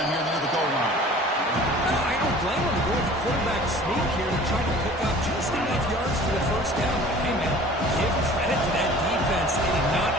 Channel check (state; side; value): normal; both; correlation 0.46